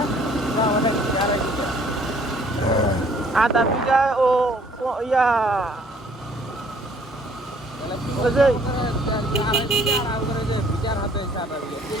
আধা বিঘা ও ইয়া ওই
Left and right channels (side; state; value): both; normal; correlation 0.59